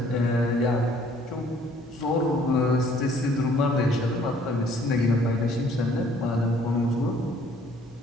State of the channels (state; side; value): normal; both; correlation 0.59